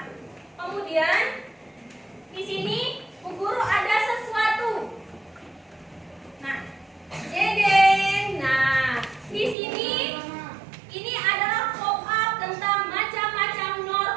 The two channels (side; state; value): left; drops out; at 9.6 s